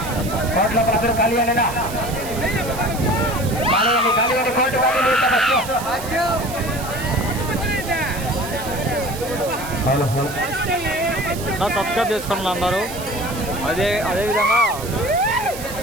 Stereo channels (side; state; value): right; noise; hiss, 12 dB below the sound